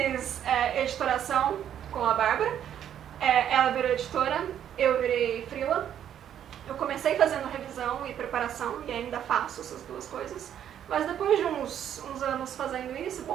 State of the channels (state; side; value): quieter; left; 9.9 dB